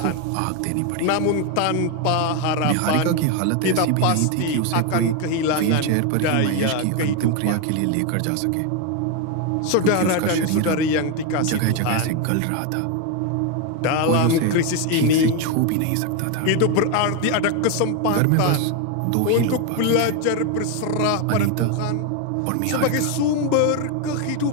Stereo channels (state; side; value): different; both; correlation 0.01